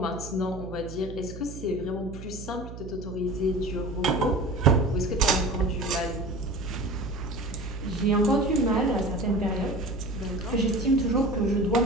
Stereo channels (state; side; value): noise; right; hum, 12 dB below the sound